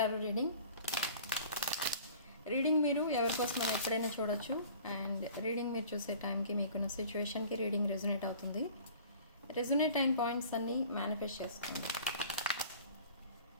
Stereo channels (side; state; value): both; inverted; correlation -0.47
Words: reading మీరు ఎవరికోసం ఎప్పుడైనా చూడొచ్చు. అండ్ రీడింగ్ మీరు చూసే టైంకి మీకున్న సిచ్యువేషన్కి రీడింగ్ రెజొనేట్ అవుతుంది. రెజొనేట్ అయిన పాయింట్స్ అన్నీ మేనిఫెస్ట్ చేసుకోండి.